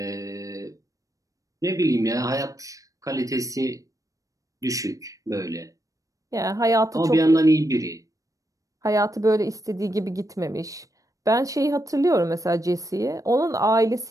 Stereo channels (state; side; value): late; left; 0.16 ms